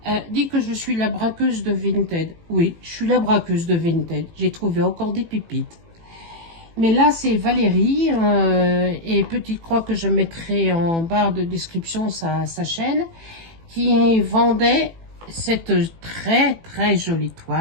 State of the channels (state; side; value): late; left; 18 ms